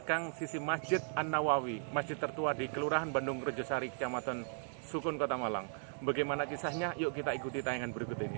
sisi Masjid An-Nawawi, masjid tertua di Kelurahan Bandung Rejosari, Kecamatan Sukun, Kota Malang. Bagaimana kisahnya? Yuk kita ikuti tayangan berikut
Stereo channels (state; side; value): silent; left; 53 dB below the other